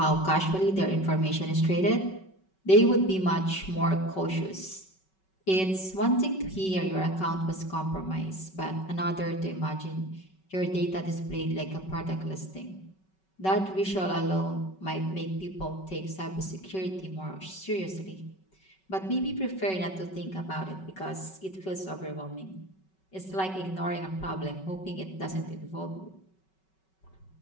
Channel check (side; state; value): right; late; 5.3 ms